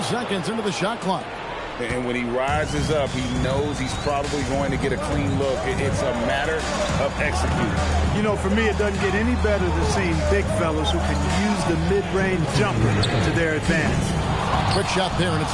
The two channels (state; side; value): identical; both; correlation 1.00